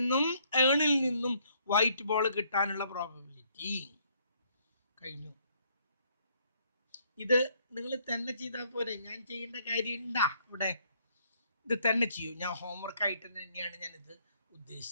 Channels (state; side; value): inverted; both; correlation -0.67